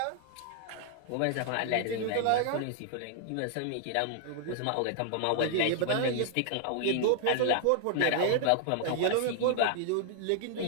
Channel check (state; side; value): different; both; correlation 0.00